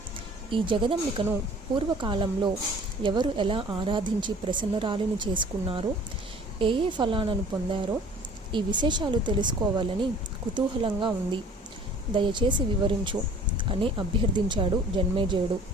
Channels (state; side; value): normal; both; correlation 0.50